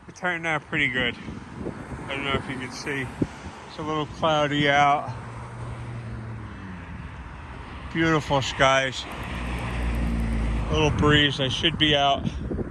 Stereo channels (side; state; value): both; identical; correlation 1.00